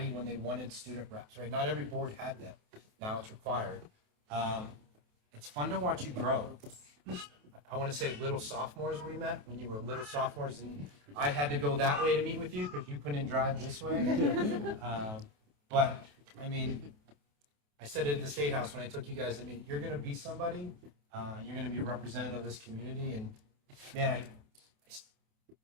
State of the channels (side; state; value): left; late; 28 ms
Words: when they wanted student reps, right? Not every board had that. Now it's required. It's fun to watch you grow. I want to say little sophomores we met when you were little sophomores, and I had to go that way to meet with you because you couldn't drive this way. But I mean, I said it at the State House when I took you guys. I mean, you're going to be somebody. You're going to be a representative of this community, and man,